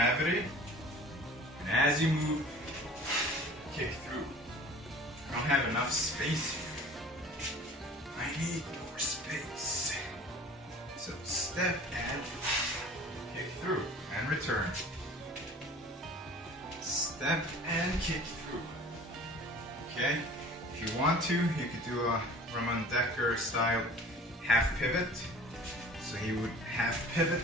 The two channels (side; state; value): both; normal; correlation 0.45